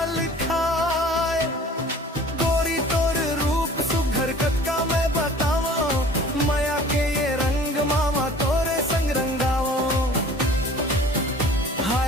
खाए। गोरी तोर रूप सुघर कतका मैं बताओ माया के ये रंग मामा तोरे संग रंगाओ।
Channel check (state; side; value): normal; both; correlation 0.47